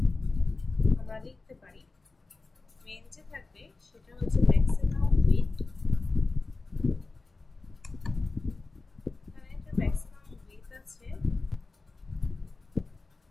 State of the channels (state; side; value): quieter; right; 3.6 dB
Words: আমরা লিখতে পারি, মেইন যে থাকবে সেটা হচ্ছে ম্যাক্সিমাম উইডথ, এখানে একটা ম্যাক্সিমাম উইডথ আছে